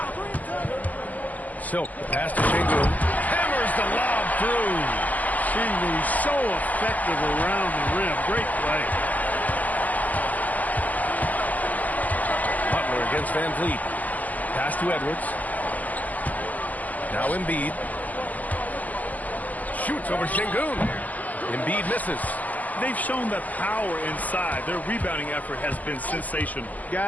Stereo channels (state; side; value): late; right; 0.079 ms